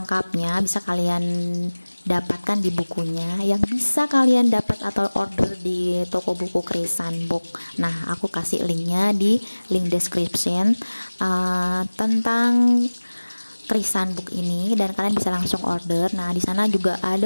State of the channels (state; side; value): inverted; both; correlation -1.00